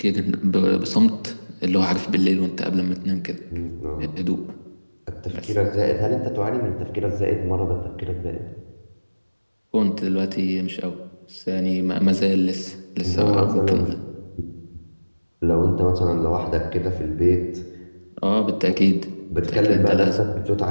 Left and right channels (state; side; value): inverted; both; correlation -1.00